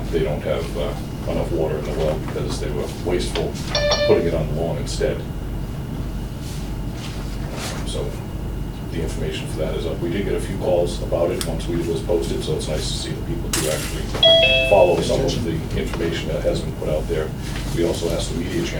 they don't have enough water in the well because they were wasteful putting it on the lawn instead. So the information for that is up. We did get a few calls about it once we was posted, so it's nice to see that people do actually follow some of the information that has been put out there. We also asked the media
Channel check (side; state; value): both; identical; correlation 1.00